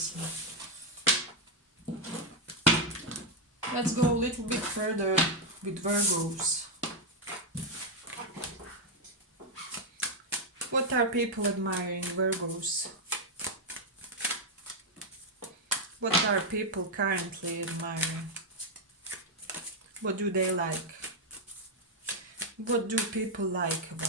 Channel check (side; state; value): both; normal; correlation 0.01